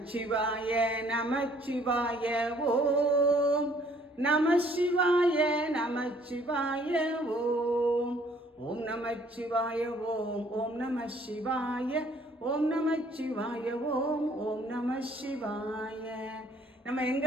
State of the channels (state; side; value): normal; both; correlation 0.61